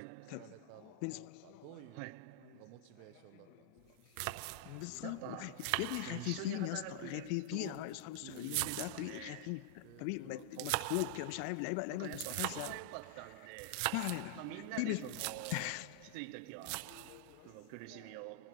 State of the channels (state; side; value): different; both; correlation 0.00